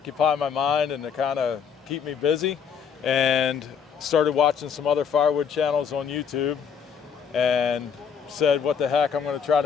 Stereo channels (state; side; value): quieter; right; 7.1 dB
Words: my mind and to kind of keep me busy, and started watching some other firewood channels on YouTube and said, what the heck, I'm going to try